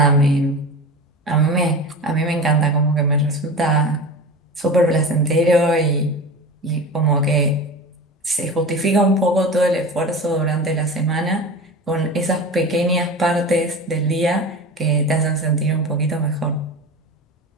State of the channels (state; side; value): normal; both; correlation 0.31